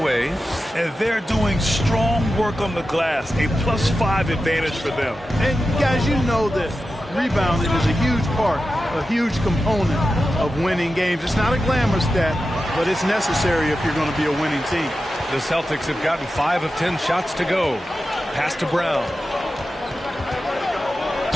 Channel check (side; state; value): both; normal; correlation 0.92